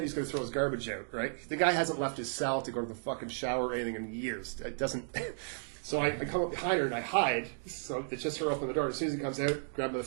he's going to throw his garbage out, right? The guy hasn't left his cell to go to the fucking shower or anything in years. It doesn't... So I come up behind her and I hide. So it's just her open the door. As soon as he comes out, grab the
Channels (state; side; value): silent; left; digital silence